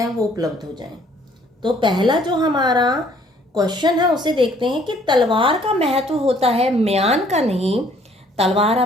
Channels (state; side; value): normal; both; correlation 0.61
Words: वो उपलब्ध हो जाएं। तो पहला जो हमारा क्वेश्चन है उसे देखते हैं कि तलवार का महत्व होता है म्यान का नहीं। तलवार